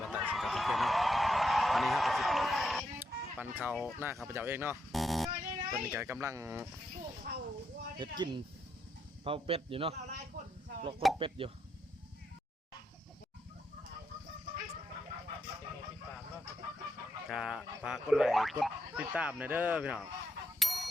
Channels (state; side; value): normal; both; correlation 0.80